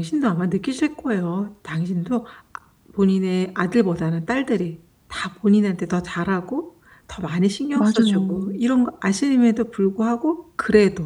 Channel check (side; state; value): both; identical; correlation 1.00